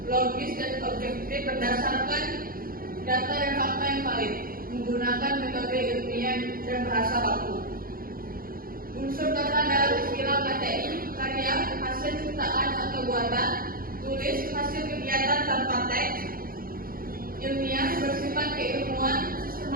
logis dan objektif berdasarkan data dan fakta yang valid, menggunakan metode ilmiah dan bahasa baku. Unsur data dalam istilah KTI, karya, hasil ciptaan atau buatan, tulis, hasil kegiatan tanpa teks, ilmiah, bersifat keilmuan,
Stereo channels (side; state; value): left; late; 0.42 ms